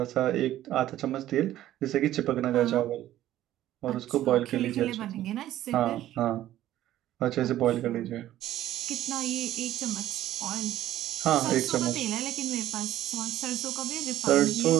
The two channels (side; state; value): left; quieter; 13.4 dB